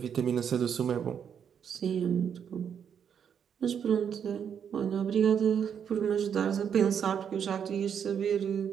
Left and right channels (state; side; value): quieter; left; 7.9 dB